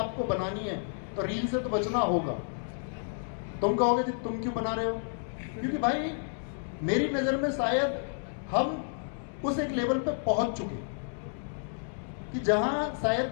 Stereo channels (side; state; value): right; silent; digital silence